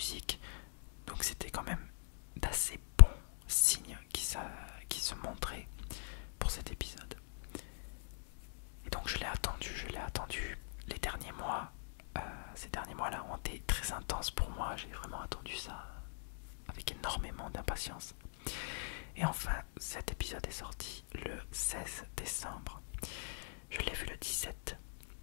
donc c'était quand même d'assez bons signes qui se montraient pour cet épisode. Et donc je l'ai attendu les derniers mois. Ces derniers mois-là ont été très intenses pour moi, j'ai vraiment attendu ça avec énormément d'impatience. Et enfin, cet épisode est sorti le 16 décembre. Je l'ai vu le 17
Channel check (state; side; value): silent; right; digital silence